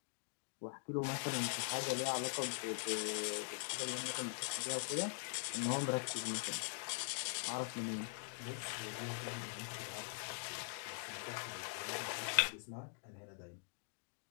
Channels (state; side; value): silent; right; digital silence